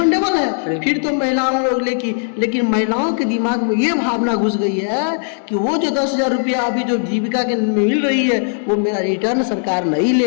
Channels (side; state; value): right; silent; digital silence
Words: है, फिर तो महिलाओं लोग लेकिन महिलाओं के दिमाग में ये भावना घुस गई है कि वो जो 10,000 रुपया अभी जो जीविका के मिल रही है, वो मेरा रिटर्न सरकार नहीं